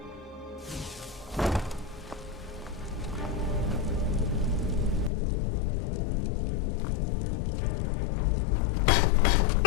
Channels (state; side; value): drops out; right; at 5.1 s